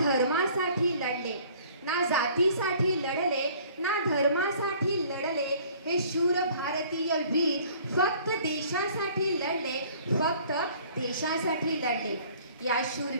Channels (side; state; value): both; inverted; correlation -0.54